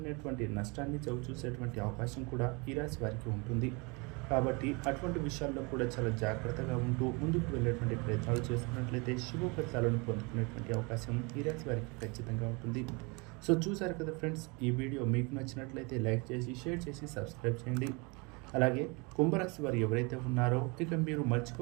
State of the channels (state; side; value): quieter; left; 29.3 dB